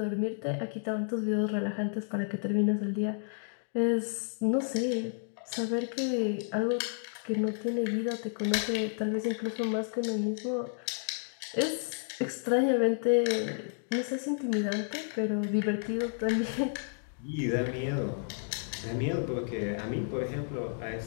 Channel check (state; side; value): silent; right; digital silence